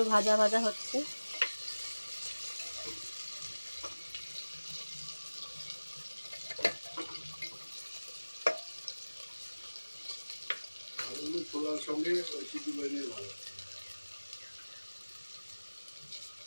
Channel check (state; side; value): inverted; both; correlation -1.00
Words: ভাজা ভাজা হচ্ছে। ছোলার সঙ্গে সিদ্ধ করে নিয়ে ভালো।